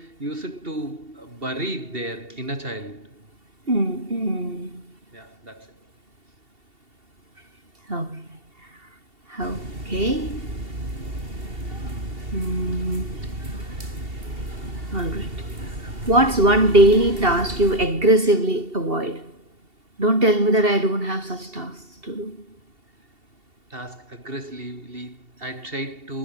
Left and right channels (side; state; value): left; late; 2.7 ms